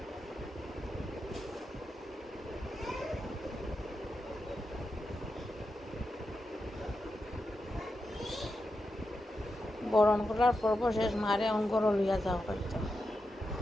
বরণ করার পর্ব শেষ, মারে অঙ্গর লইয়া যাওয়া হয়তো।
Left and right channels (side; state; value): both; normal; correlation 0.88